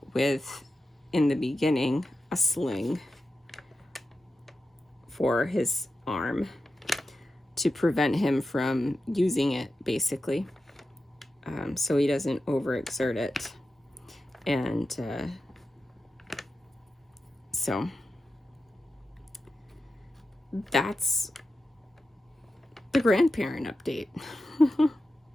with in the beginning, a sling for his arm to prevent him from using it, basically, so he doesn't overexert it. And so that's the grandparent update.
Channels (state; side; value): normal; both; correlation 0.91